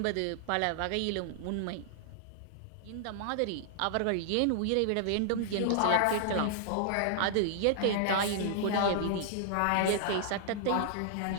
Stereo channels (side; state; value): both; different; correlation -0.01